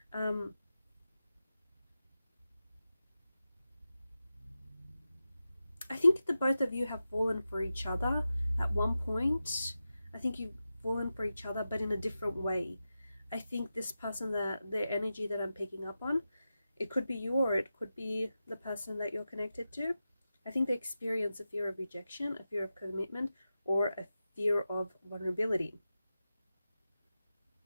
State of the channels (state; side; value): inverted; both; correlation -0.92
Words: I think the both of you have fallen for each other at one point. I think you've fallen for each other, but in a different way. I think this person, that their energy that I'm picking up on, it could be you or it could be the person that you're connected to. I think they experience a fear of rejection, a fear of commitment, or a fear of vulnerability.